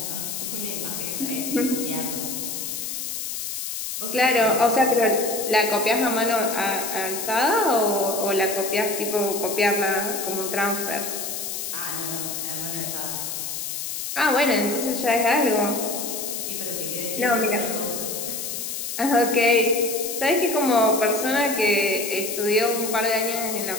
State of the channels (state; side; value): noise; left; hiss, 5 dB below the sound